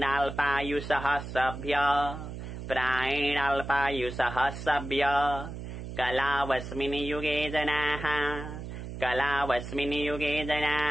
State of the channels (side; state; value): right; noise; hum, 9 dB below the sound